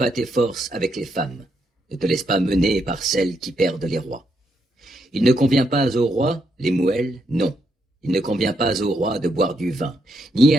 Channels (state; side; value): normal; both; correlation 0.78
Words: tes forces avec les femmes, ne te laisse pas mener par celles qui perdent les rois. Il ne convient pas au roi, Lemuel, non. Il ne convient pas au roi de boire du vin, ni